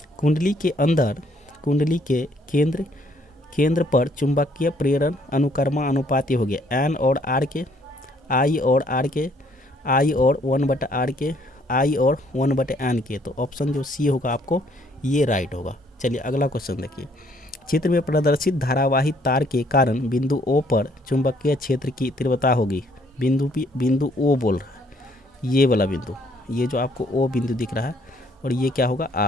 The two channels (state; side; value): normal; both; correlation 0.65